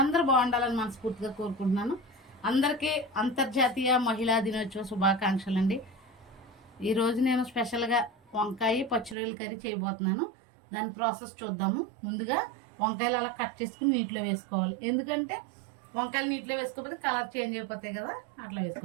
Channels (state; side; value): drops out; left; at 9.2 s